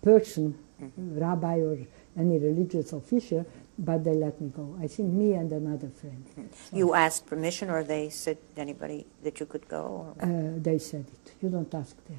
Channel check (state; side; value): silent; left; digital silence